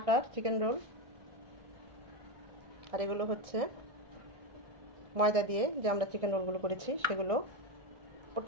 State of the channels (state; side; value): late; left; 1.6 ms